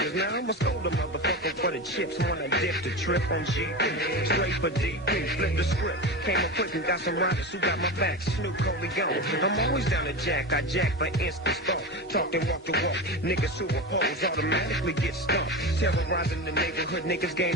Now I'm a scold a motherfucker for the chips. Wanna dip the trip on GP. Straight for DP, flip the script. Came up quick and got some riders who got my back. Snoop Dogg. I'm always down to jack. I jack for instant thought. Talk and walk the walk. Niggas who oppose automatically get stumped. Terrorizing the neighborhood. Niggas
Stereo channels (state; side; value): normal; both; correlation 0.23